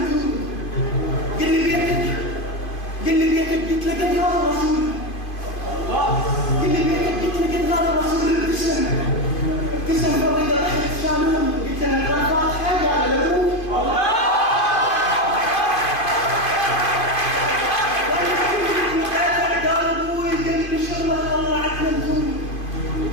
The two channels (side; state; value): right; late; 2.5 ms